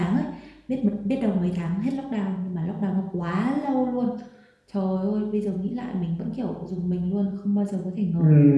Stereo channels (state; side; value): identical; both; correlation 1.00